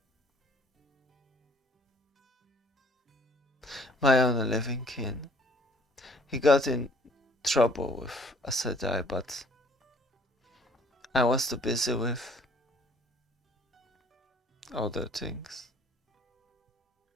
My only living kin. He got in trouble with Asadai, but I was too busy with other things.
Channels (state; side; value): normal; both; correlation 0.57